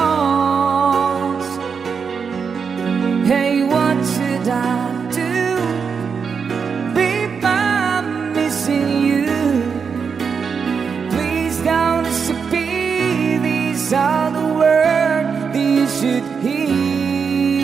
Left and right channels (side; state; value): left; quieter; 6.0 dB